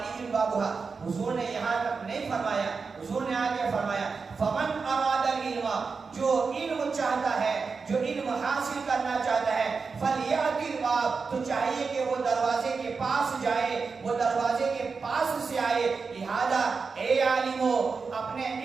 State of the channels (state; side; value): quieter; left; 4.9 dB